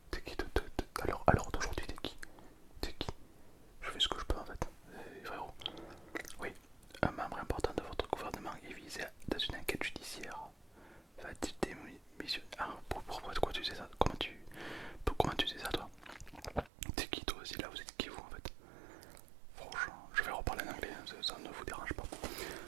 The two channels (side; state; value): left; drops out; at 16.7 s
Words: T'es qui alors d'aujourd'hui t'es qui? T'es qui? Je fais ce que je peux en fait. Frérot. Oui, un membre important de votre gouvernement est visé dans une enquête judiciaire. Va-t-il démissionner? Ah, pourquoi tu sais ça? Comment tu sais ça toi? T'es qui toi aussi là? Vous êtes qui vous en fait? Franchement, je vais reparler en anglais, ça ne vous dérange pas.